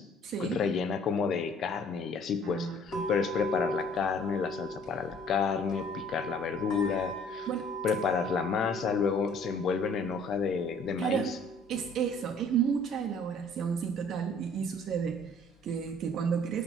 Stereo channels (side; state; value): both; normal; correlation 0.55